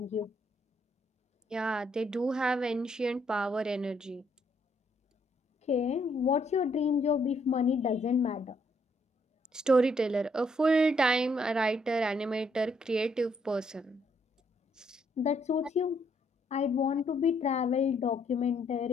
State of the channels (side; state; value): both; normal; correlation 0.71